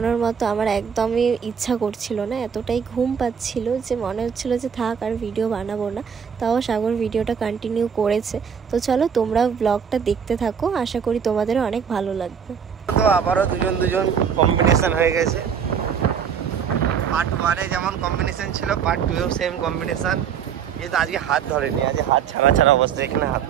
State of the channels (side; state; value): left; quieter; 7.3 dB